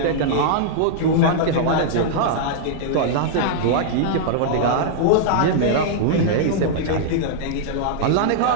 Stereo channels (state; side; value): different; both; correlation -0.01